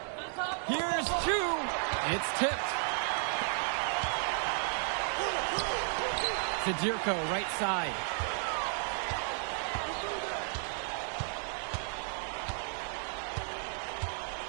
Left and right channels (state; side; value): silent; left; 55 dB below the other